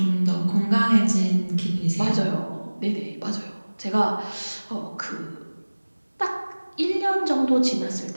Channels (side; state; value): both; inverted; correlation -1.00